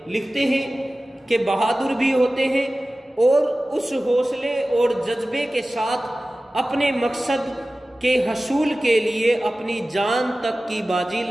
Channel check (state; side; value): normal; both; correlation 0.96